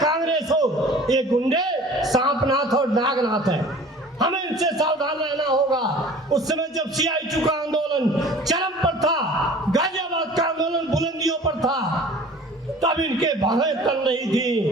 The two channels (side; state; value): both; normal; correlation 0.45